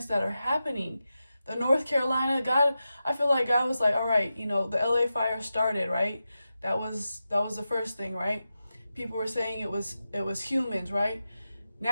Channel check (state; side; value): inverted; both; correlation -0.91